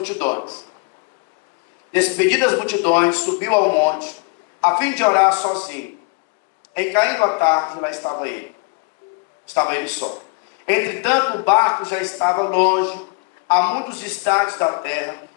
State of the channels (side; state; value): right; quieter; 33.3 dB